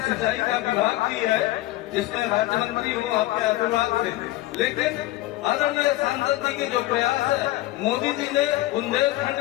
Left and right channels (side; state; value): right; quieter; 17.1 dB